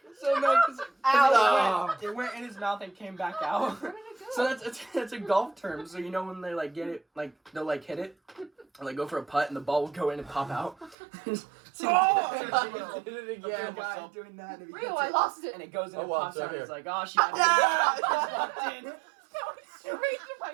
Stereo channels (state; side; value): drops out; left; at 11.0 s